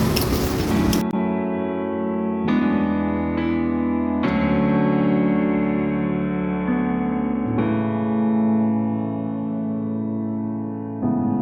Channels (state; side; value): identical; both; correlation 1.00